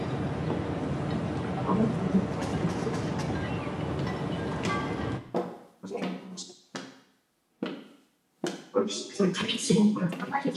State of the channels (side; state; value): both; identical; correlation 1.00